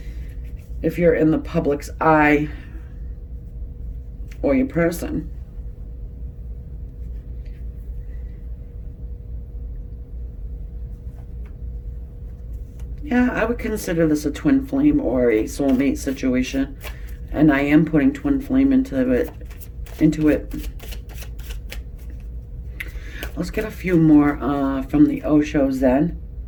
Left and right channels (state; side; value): identical; both; correlation 1.00